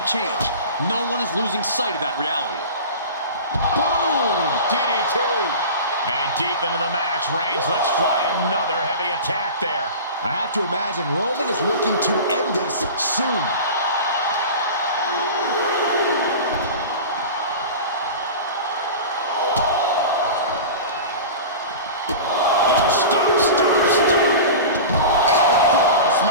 change. No one is losing sight of that reality. Boom! DDT. And deep into the match, Reigns lets fly another heavy attack there. I have to imagine Roman is looking to end this soon.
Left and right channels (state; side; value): inverted; both; correlation -0.33